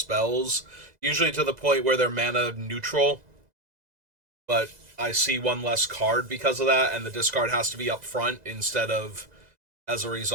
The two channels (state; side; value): late; left; 2.0 ms